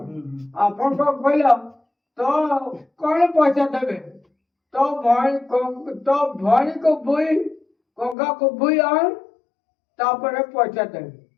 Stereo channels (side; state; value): right; drops out; at 8.2 s